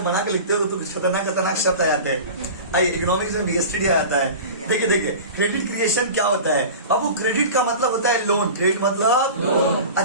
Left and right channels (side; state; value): both; inverted; correlation -0.35